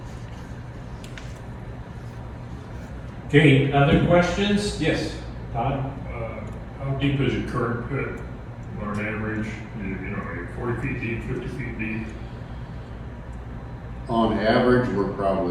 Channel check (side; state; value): both; identical; correlation 1.00